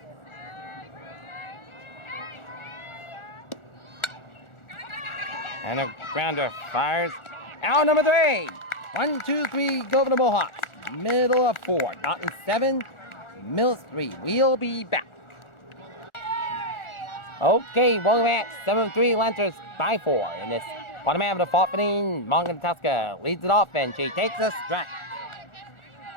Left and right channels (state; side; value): late; right; 1.4 ms